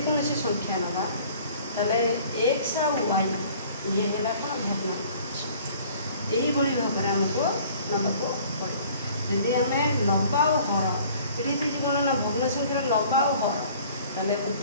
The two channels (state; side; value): inverted; both; correlation -0.51